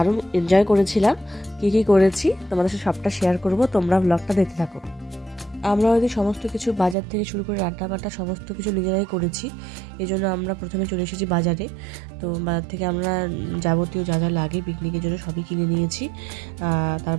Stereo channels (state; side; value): drops out; left; at 7.0 s